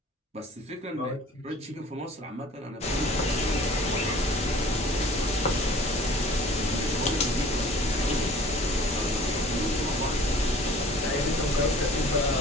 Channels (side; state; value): both; normal; correlation 0.49